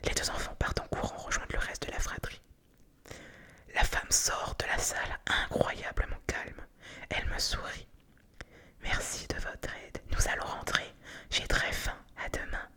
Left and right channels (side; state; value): both; identical; correlation 1.00